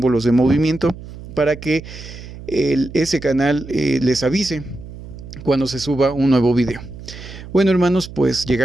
de movimiento para que ese canal les avise cuando se suba un nuevo video. Bueno, hermanos, pues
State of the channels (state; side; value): noise; right; hum, 14 dB below the sound